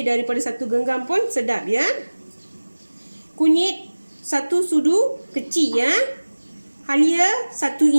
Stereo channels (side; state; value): both; inverted; correlation -1.00